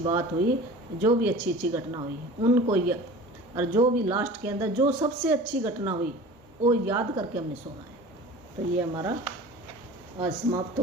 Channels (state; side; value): normal; both; correlation 0.40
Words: हुई, जो भी अच्छी अच्छी घटना हुई उनको और जो भी लास्ट के अंदर जो सबसे अच्छी घटना हुई वो याद करके हमने सोना है। तो ये हमारा आज समाप्त